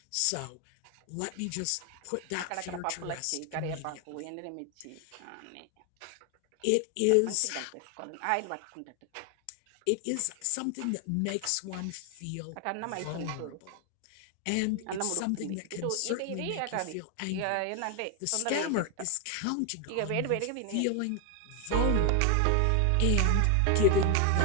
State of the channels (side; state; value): both; different; correlation 0.01